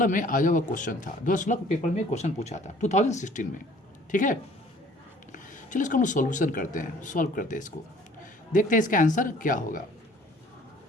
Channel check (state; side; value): normal; both; correlation 0.54